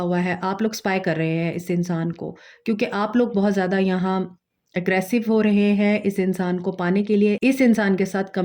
हुआ है। आप लोग स्पाई कर रहे हैं इस इंसान को, क्योंकि आप लोग बहुत ज़्यादा यहाँ एग्रेसिव हो रहे हैं इस इंसान को पाने के लिए, इस इंसान के साथ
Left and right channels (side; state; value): both; identical; correlation 1.00